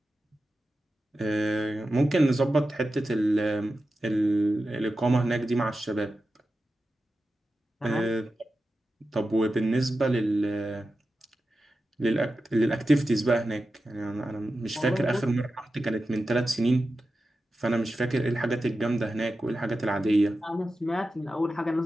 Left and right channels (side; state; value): both; normal; correlation 0.92